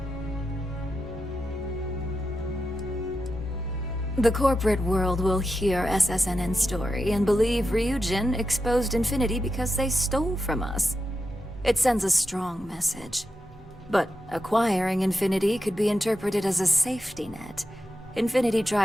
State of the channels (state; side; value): normal; both; correlation 0.88